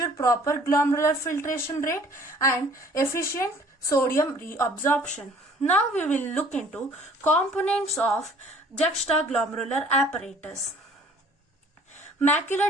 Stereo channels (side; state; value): both; normal; correlation 0.54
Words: proper glomerular filtration rate and efficient sodium reabsorption. Now we will look into components of juxtaglomerular apparatus. Macular